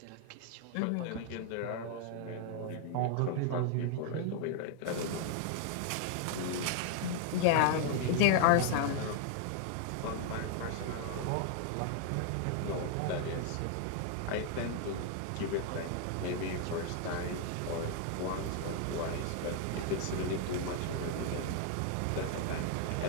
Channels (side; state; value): both; different; correlation 0.00